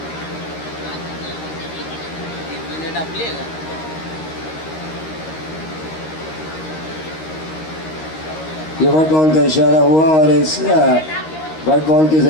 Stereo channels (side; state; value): right; late; 13 ms